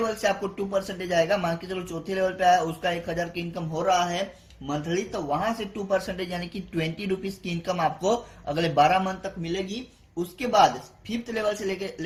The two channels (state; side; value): identical; both; correlation 1.00